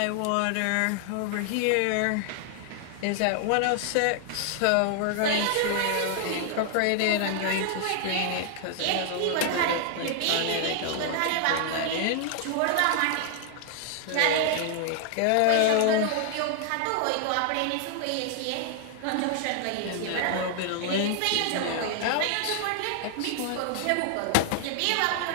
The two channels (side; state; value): both; different; correlation 0.00